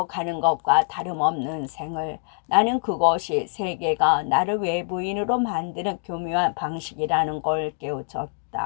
가는 것과 다름없는 생을. 나는 그것이 세계가 나를 외부인으로 만드는 교묘한 방식이라는 걸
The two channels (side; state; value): right; silent; digital silence